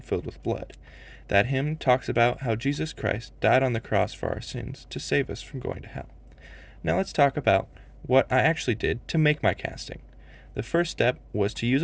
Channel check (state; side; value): identical; both; correlation 1.00